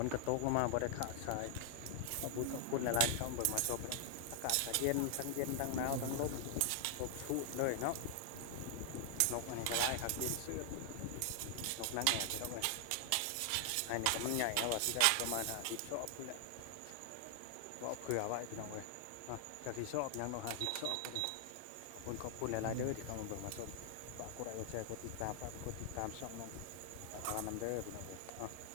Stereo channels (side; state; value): both; different; correlation 0.00